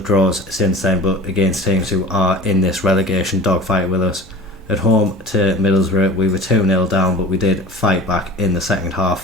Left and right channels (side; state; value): both; normal; correlation 0.40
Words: draws since then, but against teams who are in this relegation dogfight with us. At home to Middlesbrough, we were 2-0 down, but we did fight back in the second